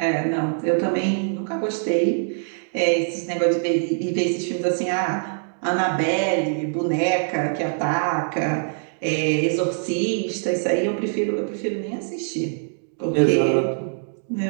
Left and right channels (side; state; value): left; silent; digital silence